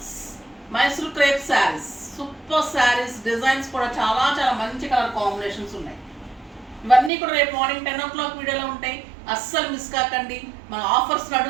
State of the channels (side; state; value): left; drops out; at 7.1 s